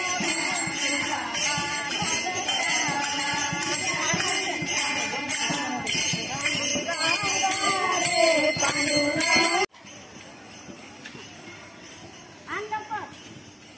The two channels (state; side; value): identical; both; correlation 1.00